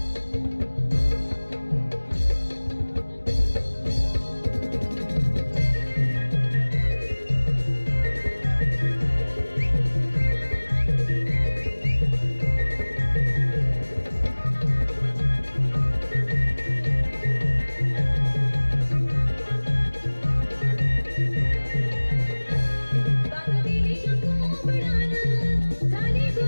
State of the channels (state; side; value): inverted; both; correlation -1.00